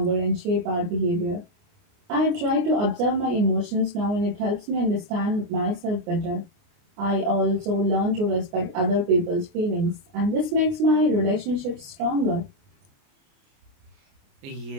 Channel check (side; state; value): left; late; 29 ms